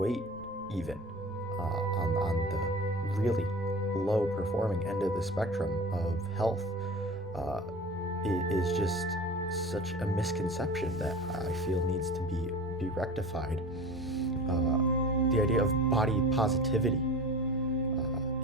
even on the really low performing end of the spectrum of health, uh, is just such a misconception that I feel needs to be rectified. The idea of body positivity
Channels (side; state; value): left; noise; rumble, 22 dB below the sound